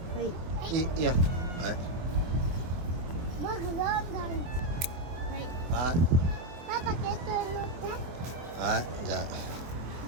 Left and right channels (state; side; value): late; left; 23 ms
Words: い。いいよ。はい。僕どんどん。はい。はい。パパケットに乗って。はい、じゃ